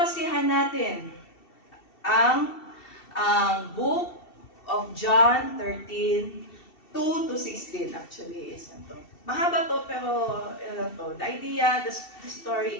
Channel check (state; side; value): late; right; 2.7 ms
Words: natin ang book of John 13:2-16 actually is ito. Mahaba to pero the idea, the